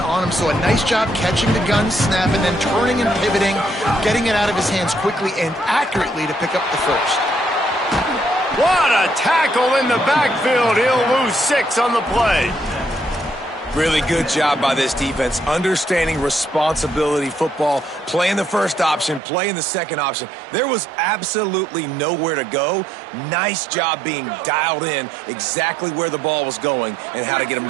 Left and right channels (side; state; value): left; drops out; at 19.2 s